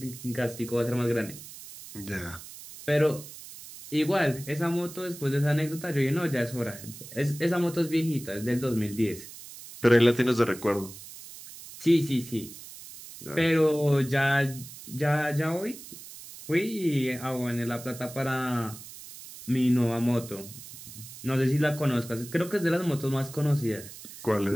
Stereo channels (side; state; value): right; noise; hiss, 15 dB below the sound